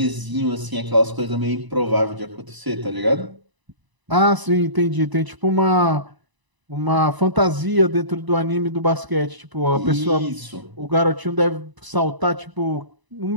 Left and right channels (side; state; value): left; late; 1.0 ms